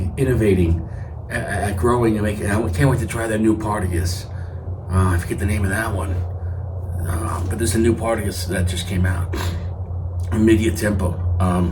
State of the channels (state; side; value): identical; both; correlation 1.00